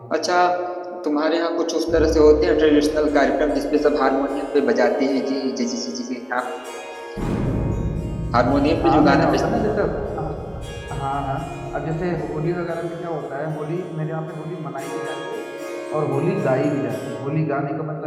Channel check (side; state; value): both; identical; correlation 1.00